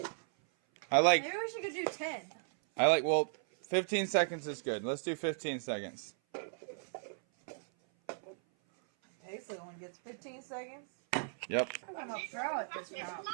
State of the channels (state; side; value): silent; left; 54 dB below the other